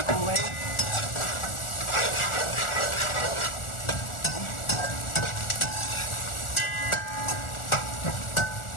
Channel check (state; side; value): late; right; 1.4 ms